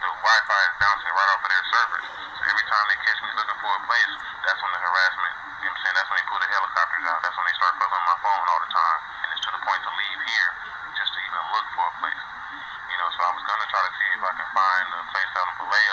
Wi-Fi is bouncing right off of their servers. So every time they catch me looking for a place, that's when the harassment. You know what I'm saying? That's when they pull the helicopters out. That's when they start fucking on my phone all the time. And it's to the point to leave here just to even look for a place. So I was gonna try to see if I can find a place out in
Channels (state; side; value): identical; both; correlation 1.00